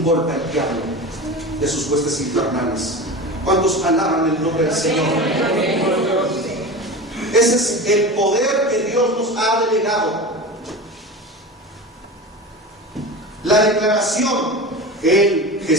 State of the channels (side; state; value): both; normal; correlation 0.29